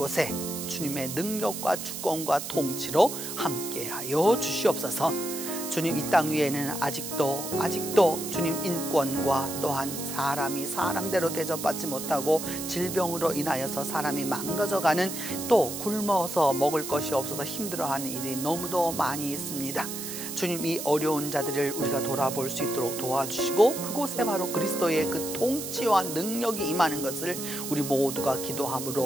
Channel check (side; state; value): right; noise; hiss, 7 dB below the sound